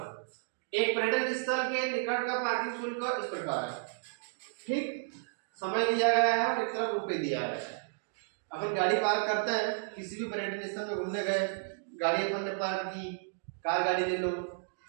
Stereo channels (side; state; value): left; silent; digital silence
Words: एक पर्यटन स्थल के निकट का पार्किंग शुल्क इस प्रकार है। ठीक, समय दिया गया है और एक तरफ रुपए दिया गया है। अपन गाड़ी पार्क करते हैं, किसी भी पर्यटन स्थल में घूमने गए, गाड़ी अपन ने पार्क की, कार गाड़ी ले लो,